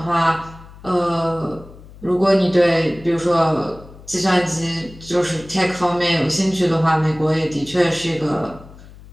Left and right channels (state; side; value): noise; left; hum, 20 dB below the sound